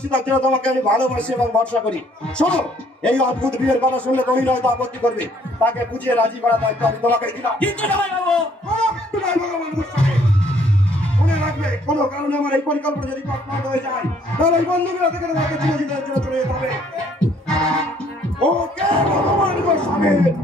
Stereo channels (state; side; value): normal; both; correlation 0.63